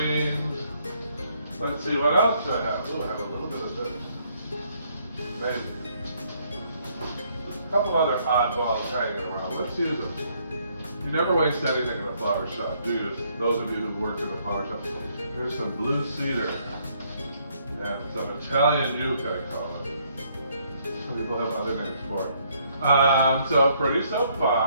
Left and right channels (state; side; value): inverted; both; correlation -0.69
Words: Let's see what else I have. Oh, I have a little bit of this. Maybe. A couple other oddballs hanging around. Let's use them. You never waste anything in a flower shop, do you? Those of you who've worked in a flower shop. There's some blue cedar and some Italian yucca, I call it. Some people have other names for it. So pretty so